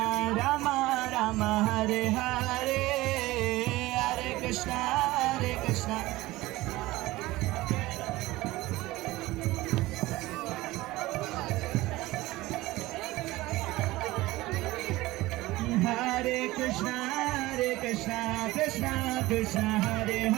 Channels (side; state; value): left; quieter; 18.7 dB